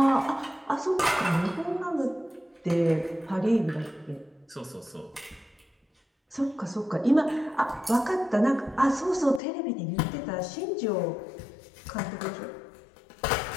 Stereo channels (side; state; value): right; drops out; at 9.4 s